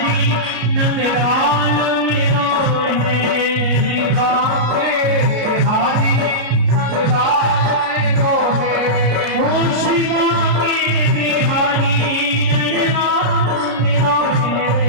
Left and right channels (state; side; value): late; left; 33 ms